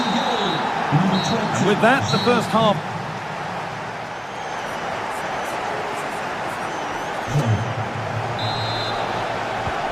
And with that, the first half.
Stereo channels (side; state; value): both; identical; correlation 1.00